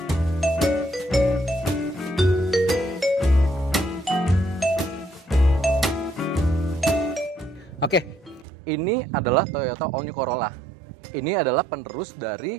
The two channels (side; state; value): left; drops out; at 8.5 s